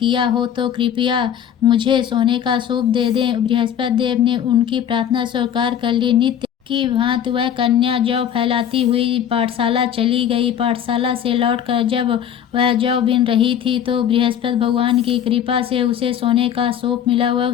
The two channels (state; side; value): quieter; right; 9.3 dB